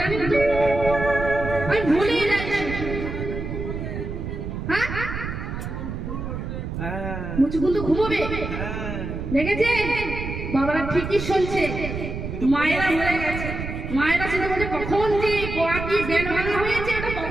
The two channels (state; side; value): noise; right; rumble, 6 dB below the sound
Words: তো, আমি ভুলে যাচ্ছি। মুচুকুন তো ঘুমোবে, দেখেছে বাবারা ঠিকই শুনছে। মায়েরা হয়ে গেছে, মায়েরা শুধু বলছে কখন যে কোয়াটি বেল ভাঙা হয়েছে, এটা